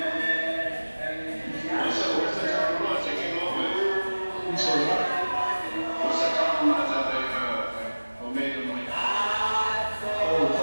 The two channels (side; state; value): both; inverted; correlation -1.00